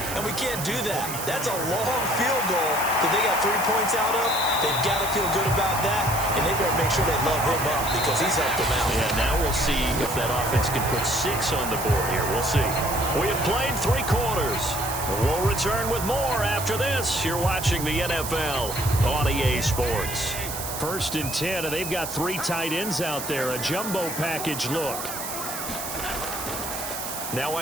and we can't do that. That's a long field goal that they got 3 points out of. They've got to feel good about that, and they better make sure they love him up because he's helped them out. Yeah, now we'll see if that offense can put 6 on the board here. We'll see. We have played 3 quarters. We'll return with more after this. You're watching the NFL on EA Sports. 1st and 10, and they've got 3 tight ends out there. A jumbo package look. Now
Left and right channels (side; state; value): right; noise; hiss, 6 dB below the sound